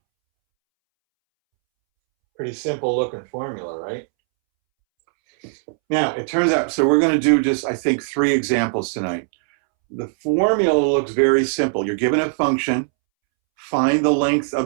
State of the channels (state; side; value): silent; left; 66 dB below the other